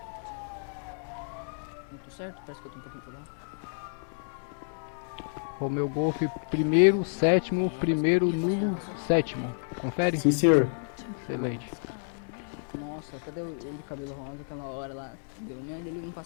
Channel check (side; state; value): right; silent; digital silence